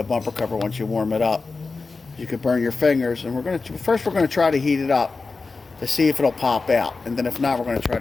bumper cover once you warm it up. You could burn your fingers. And we're going to try to heat it up to see if it'll pop out, and then if not, we're going to try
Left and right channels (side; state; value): right; quieter; 4.1 dB